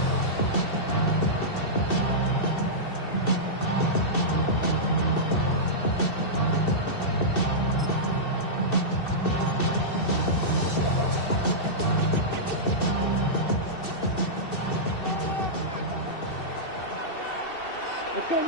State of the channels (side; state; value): right; late; 2.7 ms